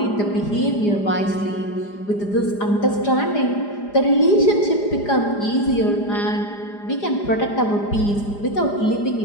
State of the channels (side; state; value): right; late; 4.9 ms